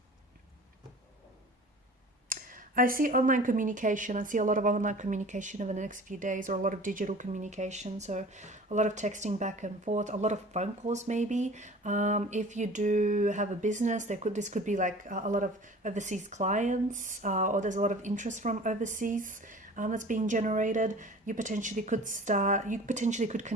I see online communication. I see a lot of online communication over the next few days, or a lot of digital communication. So a lot of texting back and forth, a lot of phone calls maybe. If you do have a business, this could be like a lot of overseas clients, or there's a lot of interest from overseas that's being generated. You potentially could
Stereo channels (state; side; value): normal; both; correlation 0.43